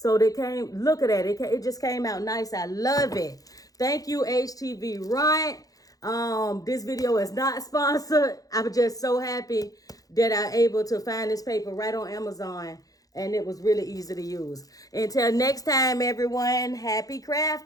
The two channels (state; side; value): late; right; 0.17 ms